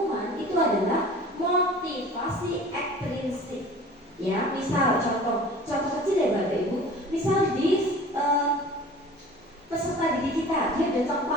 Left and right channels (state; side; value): normal; both; correlation 0.43